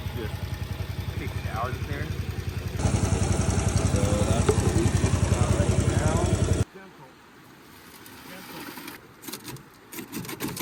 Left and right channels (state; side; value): identical; both; correlation 1.00